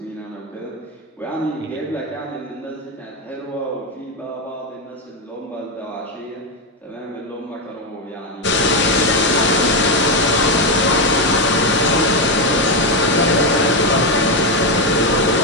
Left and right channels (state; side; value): normal; both; correlation 0.08